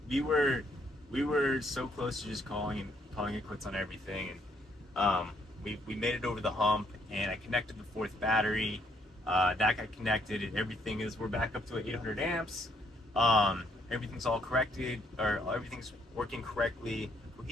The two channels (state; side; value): normal; both; correlation 0.70